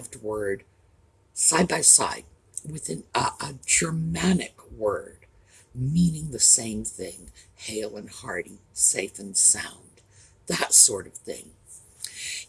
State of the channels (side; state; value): both; identical; correlation 1.00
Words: word side by side with a Germanic word meaning the same thing, hale and hearty, safe and sound, that sort of thing.